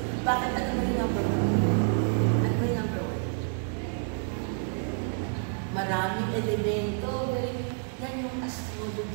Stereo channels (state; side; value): silent; left; 59 dB below the other